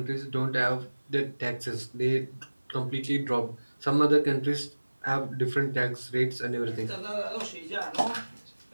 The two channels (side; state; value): both; inverted; correlation -1.00